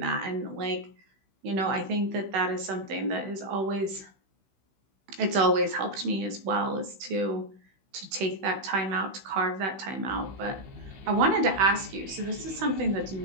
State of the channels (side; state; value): left; late; 16 ms